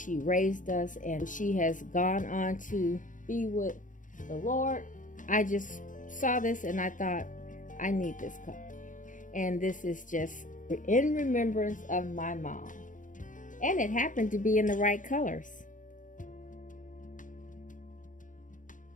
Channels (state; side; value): late; right; 0.38 ms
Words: raised us, and she has gone on to be with the Lord. I just saw this and I thought, I need this cup. And this is just in remembrance of my mom. And it happened to be in the right colors.